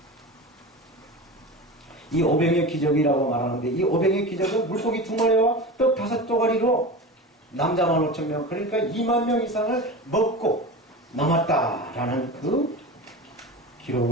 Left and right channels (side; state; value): both; normal; correlation 0.29